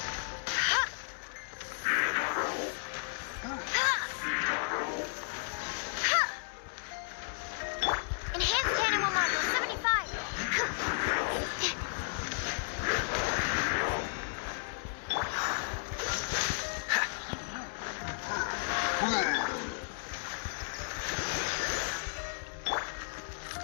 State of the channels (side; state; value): right; silent; digital silence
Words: Enhanced animal module 75.